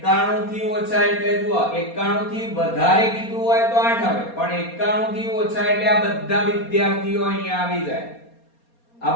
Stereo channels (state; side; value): late; right; 4.2 ms